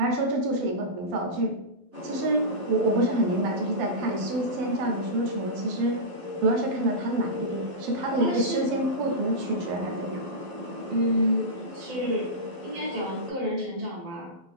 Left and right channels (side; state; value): left; late; 12 ms